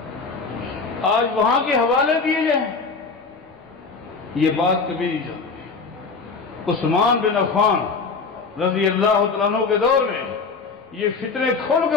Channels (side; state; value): right; quieter; 4.7 dB